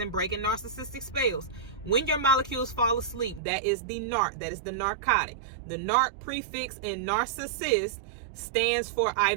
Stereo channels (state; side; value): drops out; left; at 3.4 s